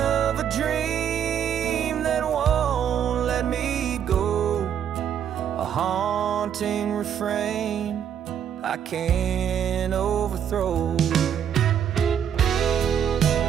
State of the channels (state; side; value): quieter; left; 8.9 dB